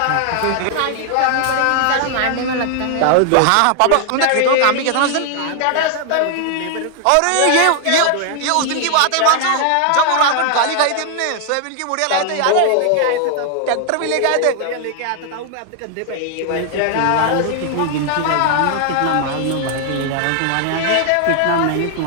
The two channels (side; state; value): both; different; correlation 0.00